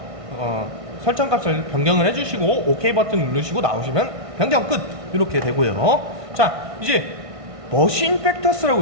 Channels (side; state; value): left; late; 1.5 ms